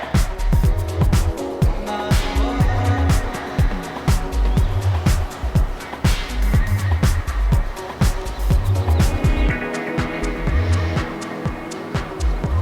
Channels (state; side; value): identical; both; correlation 1.00